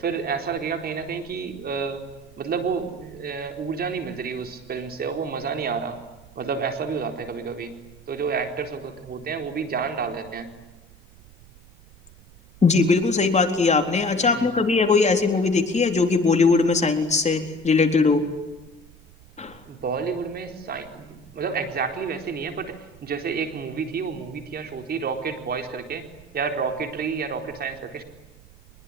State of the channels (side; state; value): right; noise; rumble, 23 dB below the sound